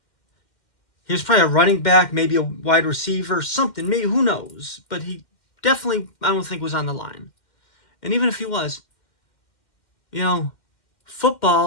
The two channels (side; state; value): right; late; 2.1 ms